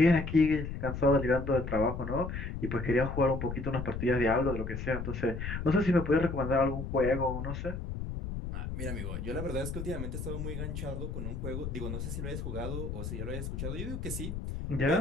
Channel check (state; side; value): noise; left; rumble, 5 dB below the sound